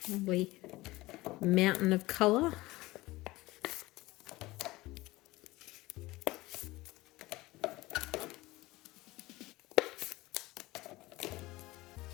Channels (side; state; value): right; quieter; 19.6 dB